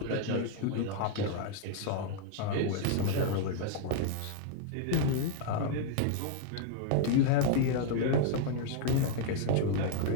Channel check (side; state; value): both; different; correlation -0.01